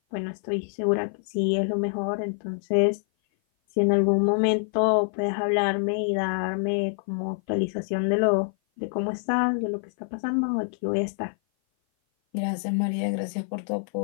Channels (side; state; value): right; silent; 56 dB below the other